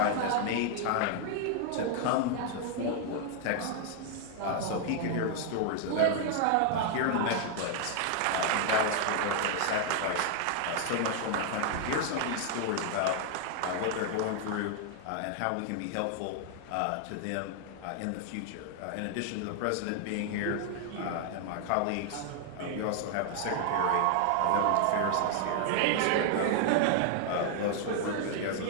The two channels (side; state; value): both; different; correlation 0.00